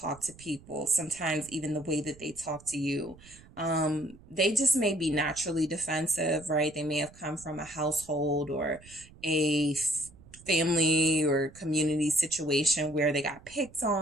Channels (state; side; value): noise; right; rumble, 22 dB below the sound